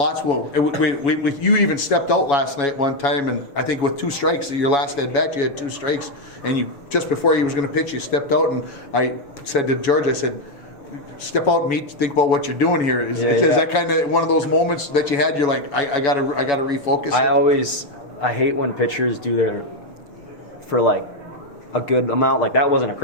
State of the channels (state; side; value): late; right; 7.1 ms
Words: Well, you even stepped out last night one time, and I think with 2 strikes, your last at bat, you had 2 strikes, and you just before he was going to pitch, you stepped out, and I said to George, I said, step out and think about what you're doing here. Is that kind of one of those moments that you had? You're like, I gotta refocus. I hate when pitchers do their for like a good amount. Like that wasn't a